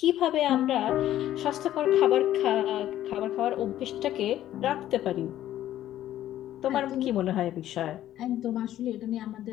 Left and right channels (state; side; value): quieter; right; 12.7 dB